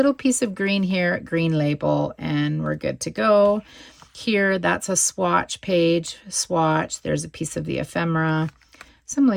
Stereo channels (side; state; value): both; identical; correlation 1.00